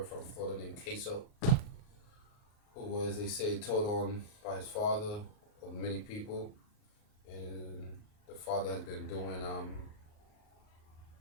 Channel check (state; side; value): late; right; 38 ms